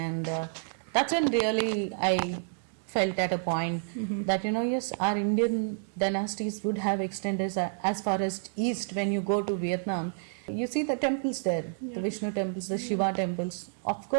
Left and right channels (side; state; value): left; silent; digital silence